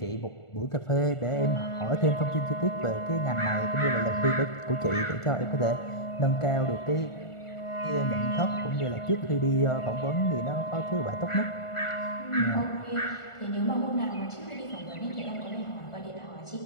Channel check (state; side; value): late; right; 1.4 ms